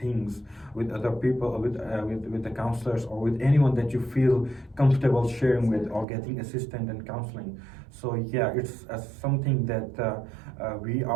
with other people, with the counselors, or with anyone that you feel comfortable sharing with or getting assistance and counseling. So yeah, it's something that we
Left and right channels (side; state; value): left; drops out; at 6.1 s